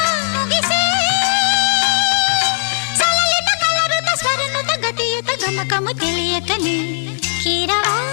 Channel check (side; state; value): right; silent; 59 dB below the other